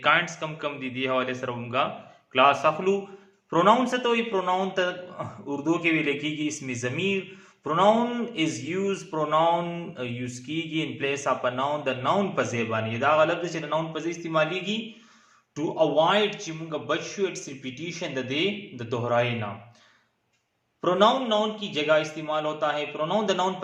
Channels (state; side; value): identical; both; correlation 1.00